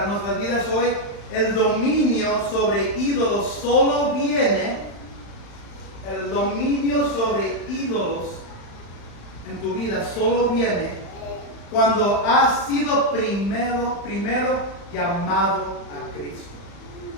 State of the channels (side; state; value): right; late; 35 ms